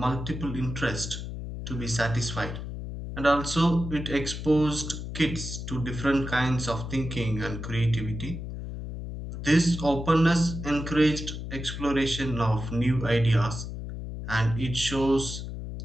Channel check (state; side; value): noise; left; hum, 7 dB below the sound